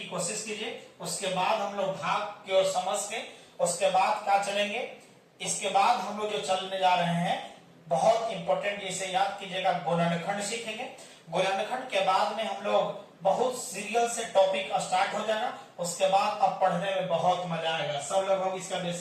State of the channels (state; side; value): identical; both; correlation 1.00